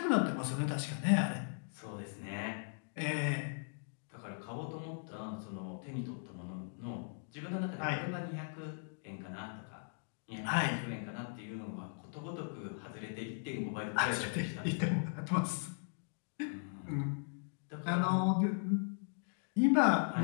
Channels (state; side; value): silent; right; digital silence